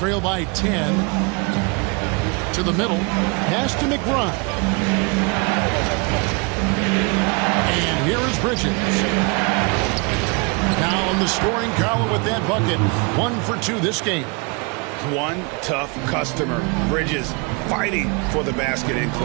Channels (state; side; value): quieter; left; 31.2 dB